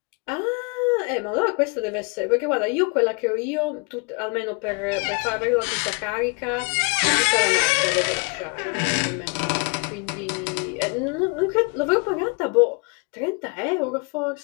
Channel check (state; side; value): quieter; right; 33.1 dB